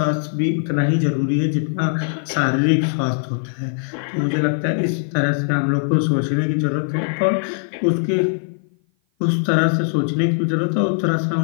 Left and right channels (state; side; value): silent; right; 56 dB below the other